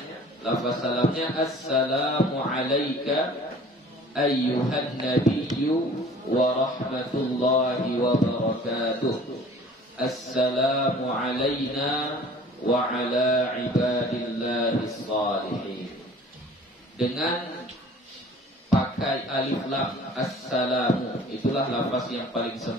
assalamu alayka ayyuhan nabiyyu wa rahmatullahi wa barakatuh. Assalamu alayna wa ala ibadillahis salihin. Dengan pakai alif lam assalamu, itulah lafaz yang paling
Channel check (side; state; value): both; normal; correlation 0.49